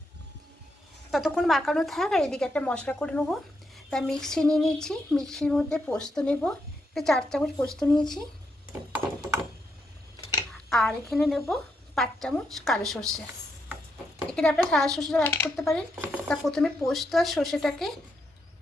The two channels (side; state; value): both; normal; correlation 0.80